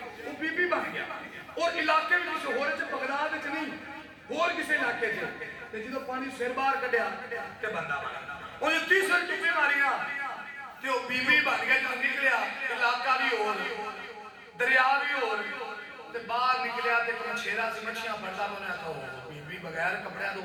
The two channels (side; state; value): both; identical; correlation 1.00